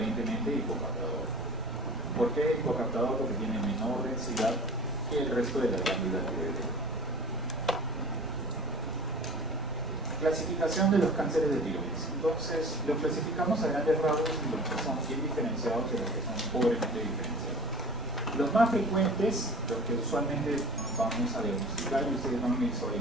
hipocaptador. ¿Por qué hipocaptador? Porque tiene menor densidad que el resto de la glándula tiroidea. Clasificación de los cánceres de tiroides. Entonces, los clasificamos a grandes rasgos en los que son bien diferenciados y los que son pobremente diferenciados. Los más frecuentes, los que usualmente vamos a diagnosticar y ustedes van a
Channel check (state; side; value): normal; both; correlation 0.41